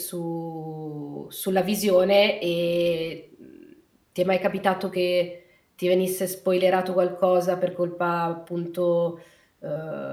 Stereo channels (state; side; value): identical; both; correlation 1.00